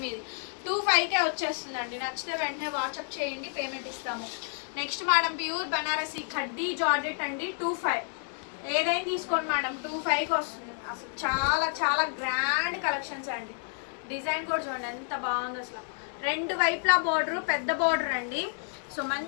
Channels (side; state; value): right; silent; 58 dB below the other